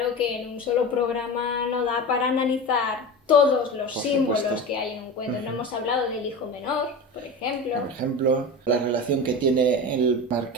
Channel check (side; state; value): both; normal; correlation 0.28